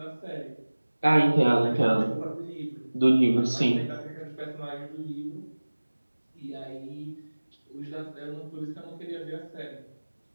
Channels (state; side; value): inverted; both; correlation -1.00